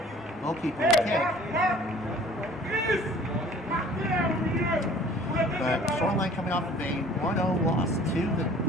will kick. But Shoreline coming off of a 1-0 loss to the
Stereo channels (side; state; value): both; normal; correlation 0.51